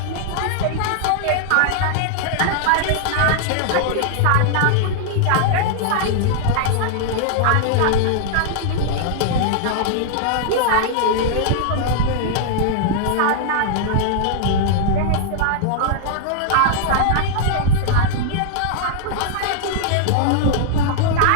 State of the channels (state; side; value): different; both; correlation -0.01